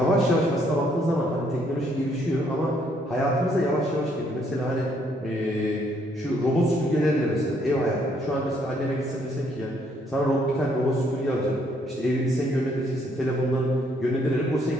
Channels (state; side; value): normal; both; correlation 0.69